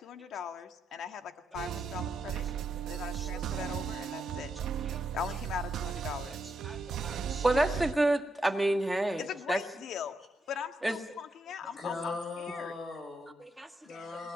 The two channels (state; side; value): normal; both; correlation 0.80